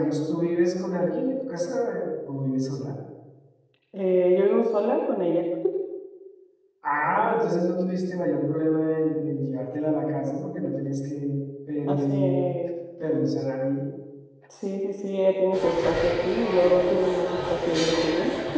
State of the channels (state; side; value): identical; both; correlation 1.00